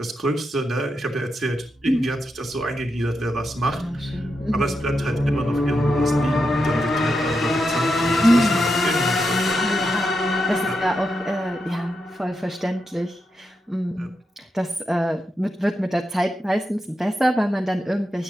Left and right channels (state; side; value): normal; both; correlation 0.86